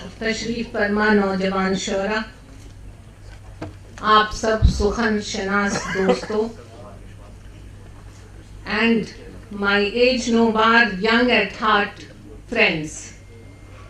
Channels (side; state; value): both; identical; correlation 1.00